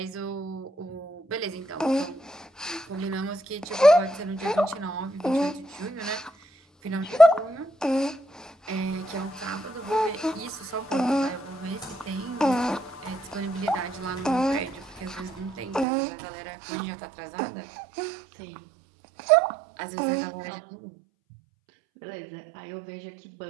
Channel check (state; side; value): drops out; left; at 15.9 s